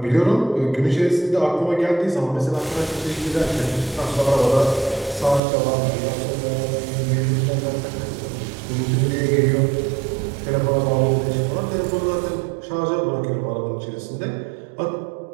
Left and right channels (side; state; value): left; drops out; at 5.4 s